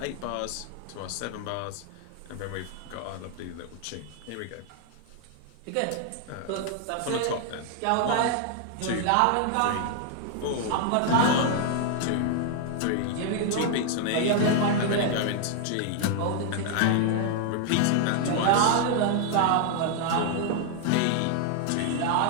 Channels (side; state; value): both; different; correlation 0.00